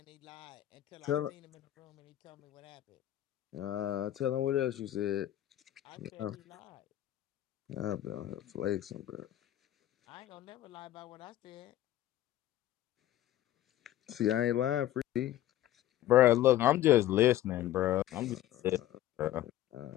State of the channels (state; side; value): quieter; right; 13.4 dB